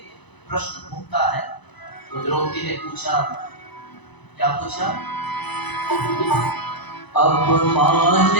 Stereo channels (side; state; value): right; late; 1.0 ms